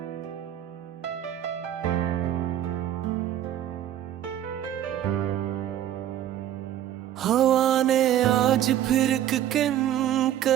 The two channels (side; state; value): left; quieter; 11.5 dB